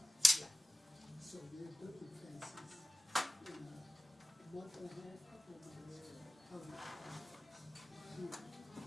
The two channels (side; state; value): both; normal; correlation 0.96